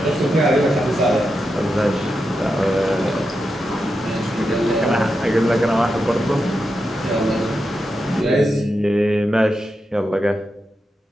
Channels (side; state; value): both; normal; correlation 0.87